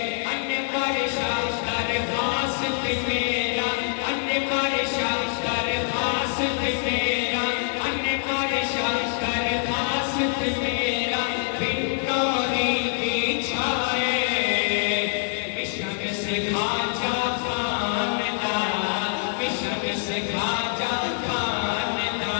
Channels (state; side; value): silent; right; 62 dB below the other